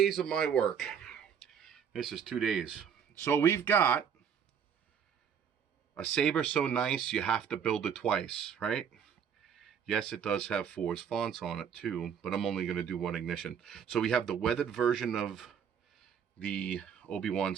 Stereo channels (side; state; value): left; quieter; 7.7 dB